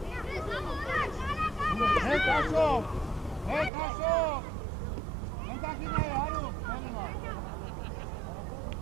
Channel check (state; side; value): drops out; left; at 3.7 s